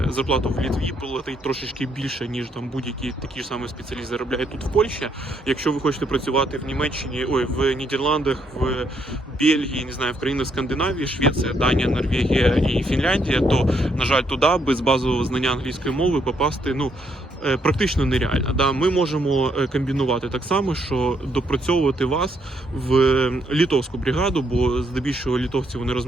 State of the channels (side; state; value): both; normal; correlation 0.73